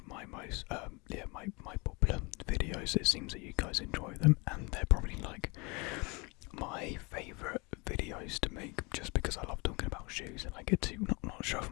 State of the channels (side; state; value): right; quieter; 28.3 dB